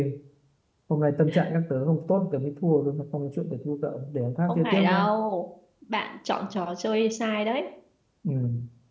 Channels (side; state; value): both; identical; correlation 1.00